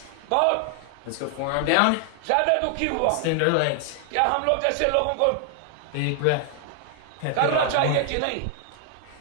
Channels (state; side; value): different; both; correlation 0.00